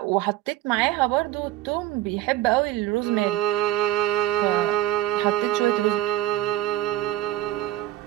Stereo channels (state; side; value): quieter; left; 15.2 dB